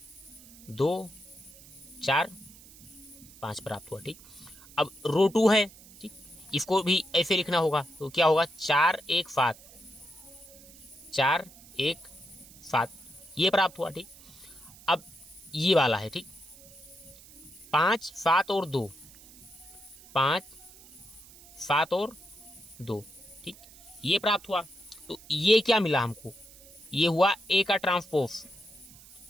2 4 5 प्राप्त हुआ, ठीक। अब रो 2 है, ठीक, इसको भी ऐसे लिखना होगा, तो क्या होगा 4 1 7, 4 1 7, ये प्राप्त हुआ, ठीक। अब ये वाला है, ठीक, 5 7 और 2, 5 7 और 2, ठीक, ये प्राप्त हुआ। तो ये क्या मिला हमको, ये हुआ ए का ट्रांसपोज,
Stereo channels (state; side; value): noise; right; hiss, 21 dB below the sound